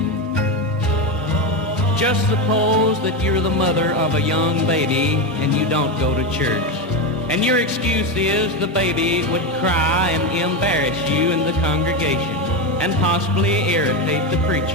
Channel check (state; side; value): normal; both; correlation 0.13